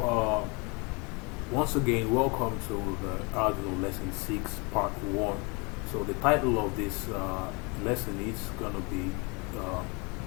once again, welcome to the Arduino lesson 6 part 1. So the title of this lesson is gonna be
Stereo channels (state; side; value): quieter; right; 30.1 dB